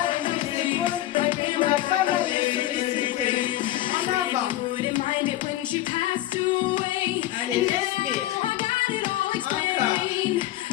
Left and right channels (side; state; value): right; quieter; 14.9 dB